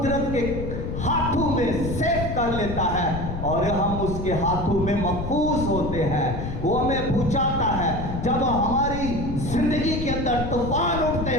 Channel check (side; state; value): left; noise; rumble, 5 dB below the sound